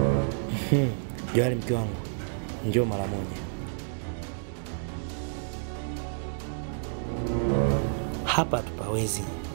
Johari mke wangu, njoo mara moja. Hapa tupawezi.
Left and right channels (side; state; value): left; silent; digital silence